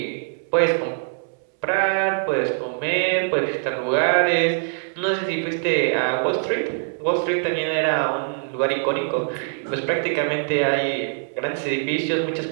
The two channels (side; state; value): left; silent; 63 dB below the other